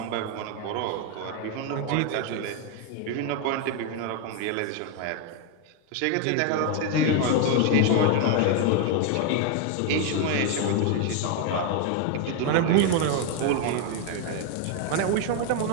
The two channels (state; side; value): different; both; correlation 0.01